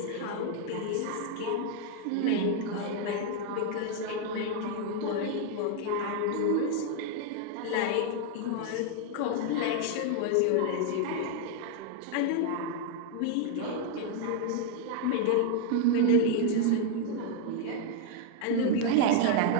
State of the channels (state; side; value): different; both; correlation 0.00